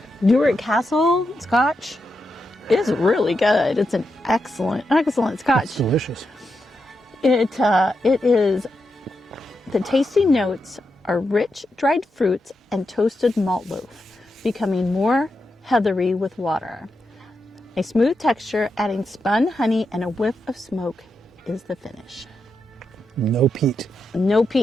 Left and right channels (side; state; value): both; normal; correlation 0.86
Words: Newark Castle Scotch, it's really good. It's an excellent It's Scotch. delicious. It is. The tasty notes are rich dried fruits and toasted malt loaf, becoming more heathery with water. A smooth texture, adding spun honey and a whiff of smoke is the finish. No peat. No